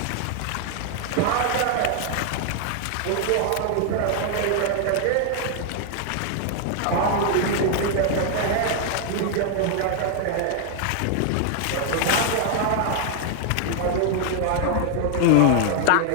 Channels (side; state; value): both; different; correlation 0.00